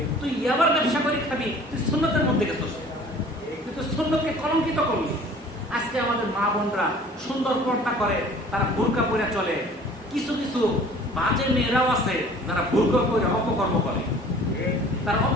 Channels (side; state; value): both; normal; correlation 0.49